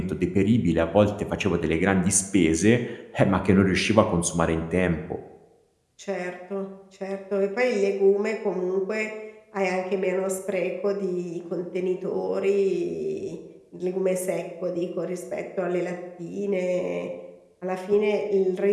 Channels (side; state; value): both; identical; correlation 1.00